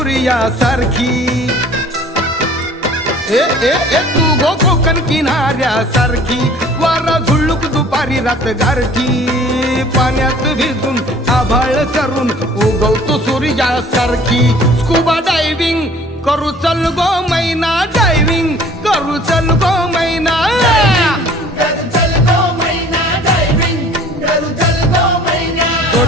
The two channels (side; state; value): both; normal; correlation 0.51